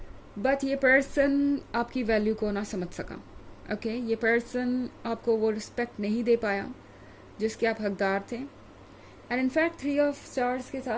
बट ये पर्सन आपकी वैल्यू को ना समझ सका। ओके, ये पर्सन आपको वो रिस्पेक्ट नहीं दे पाया जिसके आप हकदार थे। एंड इनफैक्ट 3 ऑफ स्टार्स के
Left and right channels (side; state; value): both; identical; correlation 1.00